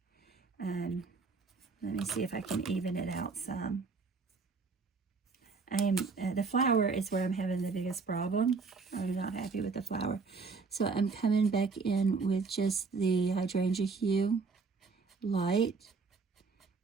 Let me see if I can even it out some. The flower is where I'm having the biggest problem. I'm not happy with the flower. So I'm coming back in with just the hydrangea hue light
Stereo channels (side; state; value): left; quieter; 4.6 dB